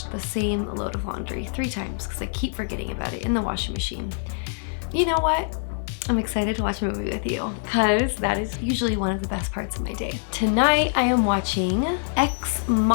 the same load of laundry 3 times because I keep forgetting about it in the washing machine. You know what? I'm excited to watch a movie with you because that is usually one of the best parts of my day. Tonight I am watching Ex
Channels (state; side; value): silent; right; digital silence